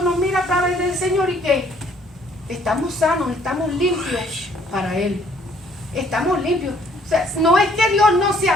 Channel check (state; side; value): normal; both; correlation 0.62